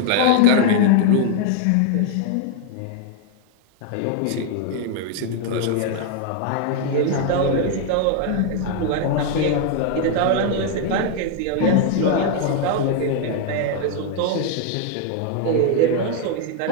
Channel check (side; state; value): both; different; correlation 0.00